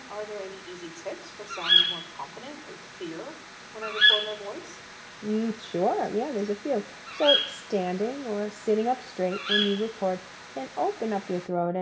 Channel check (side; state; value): both; identical; correlation 1.00